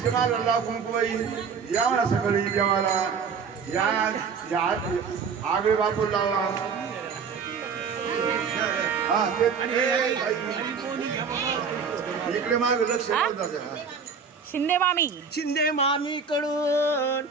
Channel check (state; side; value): quieter; left; 5.8 dB